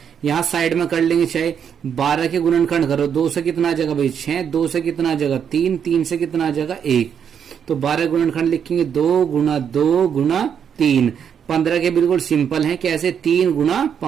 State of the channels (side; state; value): left; quieter; 7.9 dB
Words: यहाँ साइड में कर लेंगे। चाहे 12 के गुणनखंड करो, 2 से कितना जगह भाई 6, 2 से कितना जगह 3, 3 से कितना जगह 1, तो 12 गुणनखंड लिखेंगे 2 गुणा 2 गुणा 3। 15 के बिल्कुल सिंपल है, कैसे 3 गुणा